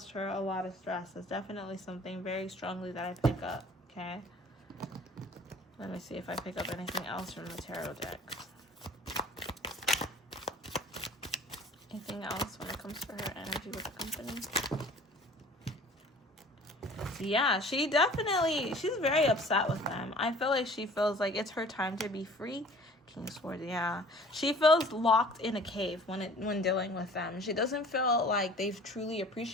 her a lot of stress. It's definitely something very strongly that I pick up. Okay, let me see if I pick up anything else from the tarot decks. Anything else when it comes to her energy with the company? Yeah, she's very upset with them. I feel like she feels like it's her time to be free. King of Swords, yeah. She feels locked in a cave when dealing with them. She doesn't feel like they've truly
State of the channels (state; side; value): normal; both; correlation 0.48